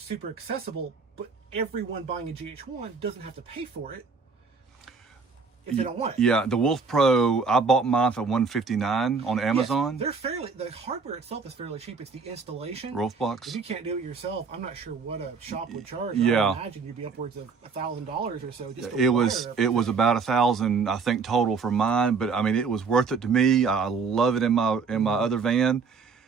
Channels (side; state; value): left; quieter; 5.1 dB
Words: super accessible, but everyone buying a GH1 doesn't have to pay for it if they don't want it. The Wolf Pro, I bought mine for $159 on Amazon. They're the hardware itself is fairly cheap. It's the installation. Wolfbox. If you can't do it yourself, I'm not sure what a shop would charge. I imagine you'd be upwards of $1,000 or so. Just it was about $1,000, I think, total for mine. But I mean, it was worth it to me. I love it in my other van.